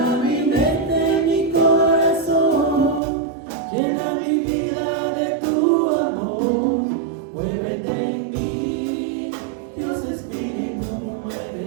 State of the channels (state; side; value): drops out; left; at 3.0 s